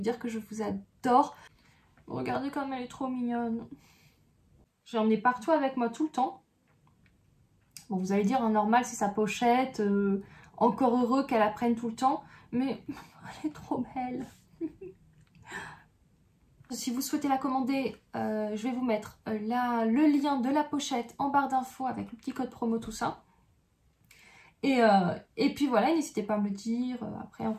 dire que je vous adore. Regardez comme elle est trop mignonne. J'ai emmené partout avec moi tout le temps. Bon, vous allez dire, normal, c'est sa pochette. Encore heureux qu'elle la prenne tout le temps. Mais elle est trop belle. Si vous souhaitez la commander, je vais vous mettre le lien de la pochette en barre d'infos avec le petit code promo, tout ça. Et puis voilà, n'hésitez pas à me le dire après en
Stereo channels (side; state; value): both; identical; correlation 1.00